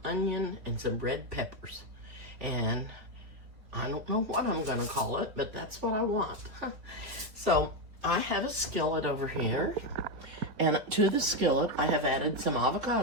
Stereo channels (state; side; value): late; left; 3.4 ms